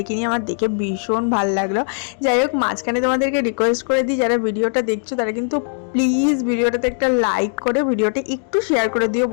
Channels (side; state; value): right; silent; digital silence